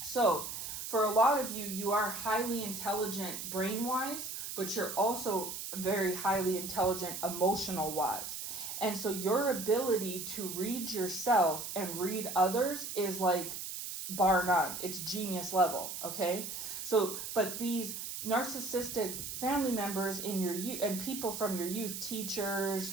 So for a lot of you, you are highly intelligent brain-wise, but you're also very highly intelligent emotional-wise. And so your ability to read yourself and read others is like bar none. It's genius level, okay? So, but these narcissistic family members in your youth and people from your youth, teachers,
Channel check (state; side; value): noise; right; hiss, 6 dB below the sound